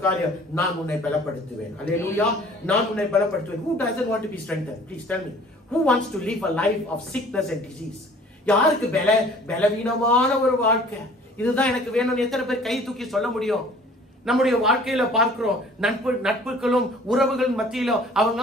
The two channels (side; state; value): both; normal; correlation 0.51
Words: காரியம், நான் உன்னை பலப்படுத்துவேன். அல்லேலூயா, நான் உன்னை பலப்படுத்துவேன். Who doesn't want to be strengthened? Please tell me. Who wants to live a life of sickness and disease? யாருக்கு பலவீனமான ஒரு வாழ்க்கை? இதுதான் எனக்கு வேணும்னு எத்தனை பேர் கை தூக்கி சொல்ல முடியும்? நம்முடைய வாழ்க்கையில பார்க்கிறோம், நட்புகளும் உறவுகள் மத்தியில